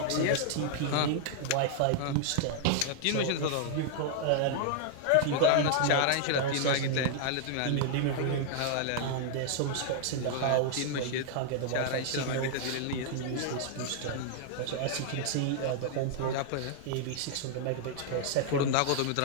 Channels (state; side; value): different; both; correlation -0.01